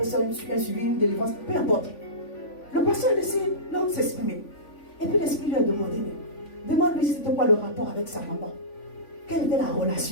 ça un suivi, une délivrance, peu importe. Le pasteur a laissé l'homme s'exprimer. Et puis l'esprit lui a demandé, demande-lui c'était quoi le rapport avec sa maman. Quelle était la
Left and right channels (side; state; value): right; late; 3.5 ms